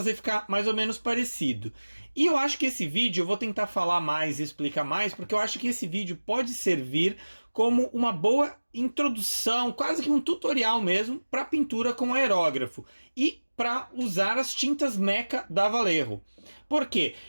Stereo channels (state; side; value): inverted; both; correlation -1.00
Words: ficar mais ou menos parecido. E eu acho que esse vídeo eu vou tentar falar mais e explicar mais, porque eu acho que esse vídeo pode servir como uma boa introdução, quase que um tutorial mesmo, para pintura com aerógrafo e para usar as tintas Mecha da Vallejo. Por quê?